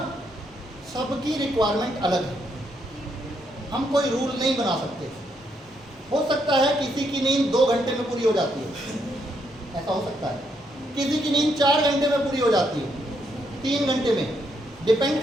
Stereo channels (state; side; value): normal; both; correlation 0.76